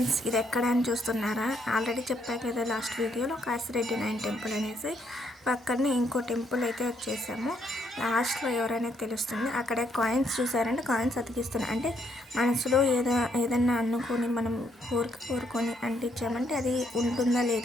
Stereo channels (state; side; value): normal; both; correlation 0.72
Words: ఇది ఎక్కడ అని చూస్తున్నారా? ఆల్రెడీ చెప్పా కదా లాస్ట్ వీడియోలో కాశిరెడ్డి 9 టెంపుల్ అనేసి. పక్కనే ఇంకో టెంపుల్ అయితే వచ్చేసాము. లాస్ట్లో ఎవరనేది తెలుస్తుంది. అక్కడ కాయిన్స్ చూసారంటే కాయిన్స్ అతికిస్తున్నాయి. అంటే మనసులో ఏదన్నా అనుకొని మనం కోరుకొని అంటించామంటే అది ఉంటుందా